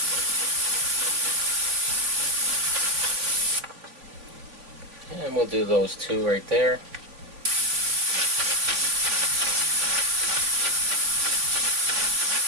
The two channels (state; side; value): late; left; 3.3 ms